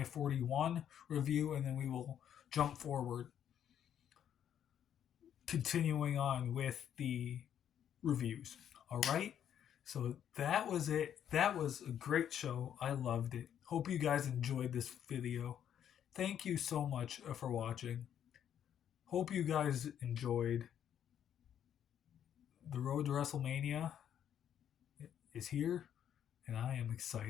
41 review, and then we will jump forward, continuing on with the reviews. All right? So that was it. That was a great show. I loved it. Hope you guys enjoyed this video. Thank you so much for watching. Hope you guys enjoyed. The road to WrestleMania is here, and I am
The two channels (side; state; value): right; quieter; 9.6 dB